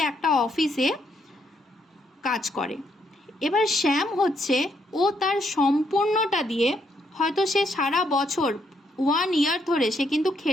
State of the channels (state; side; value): normal; both; correlation 0.74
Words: একটা অফিসে কাজ করে। এবার শ্যাম হচ্ছে, ও তার সম্পূর্ণটা দিয়ে হয়তো সে সারা বছর 1 ইয়ার ধরে সে কিন্তু